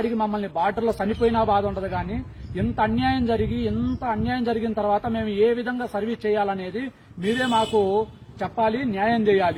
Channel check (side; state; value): both; identical; correlation 1.00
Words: మమ్మల్ని బార్డర్లో చనిపోయినా బాధ ఉండదు కానీ ఇంత అన్యాయం జరిగిన తర్వాత మేము ఏ విధంగా సర్వీస్ చేయాలనేది మీరే మాకు చెప్పాలి, న్యాయం